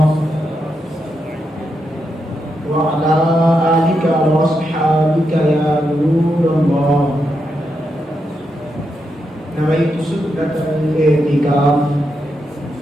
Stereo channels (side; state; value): both; normal; correlation 0.84